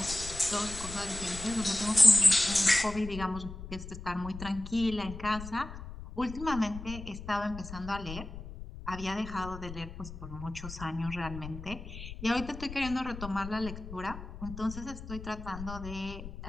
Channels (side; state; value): left; noise; rumble, 11 dB below the sound